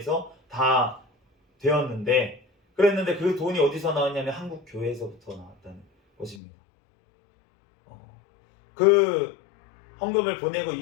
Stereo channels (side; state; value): right; drops out; at 6.4 s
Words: 다 되었는데 그랬는데 그 돈이 어디서 나왔냐면 한국 교회에서부터 나왔다는 것입니다. 그 헌금을 보내고